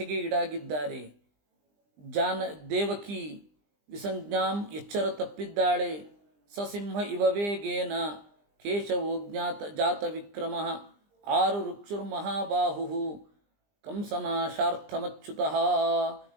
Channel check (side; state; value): left; late; 20 ms